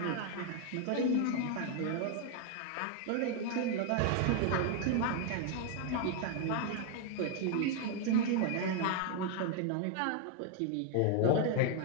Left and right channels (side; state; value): both; different; correlation 0.00